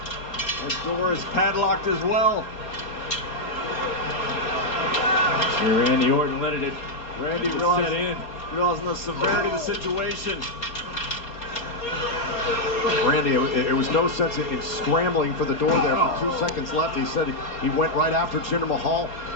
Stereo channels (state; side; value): late; right; 4.3 ms